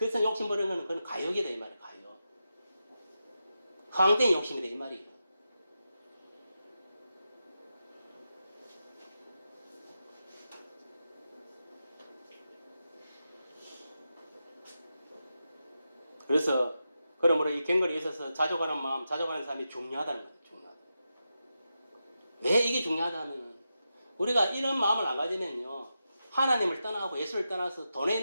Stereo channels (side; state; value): both; inverted; correlation -0.89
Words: 욕심 부리는 거는 그건 가욕이다 이 말이에요. 가욕. 허황된 욕심이다 이 말이에요. 그래서 그러므로 이 경건에 있어서 자족하는 마음, 자족하는 삶이 중요하다는 거예요. 중요하다. 왜 이게 중요하다면 우리가 이런 마음을 안 가지면요 하나님을 떠나고 예수를 떠나서 돈에